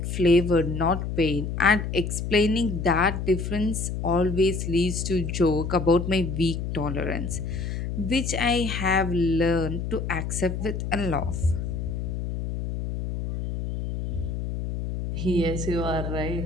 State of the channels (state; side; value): noise; left; hum, 4 dB below the sound